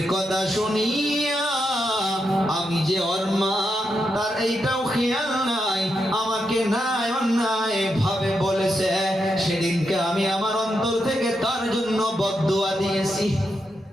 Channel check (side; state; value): both; normal; correlation 0.84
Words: কথা শুনিয়া আমি যে ওর মা, তার এইটাও খেয়াল নাই, আমাকে নাই অন্যায় ভাবে বলেছে। সেদিনকে আমি আমার অন্তর থেকে তার জন্য বদদুয়া দিয়েছি।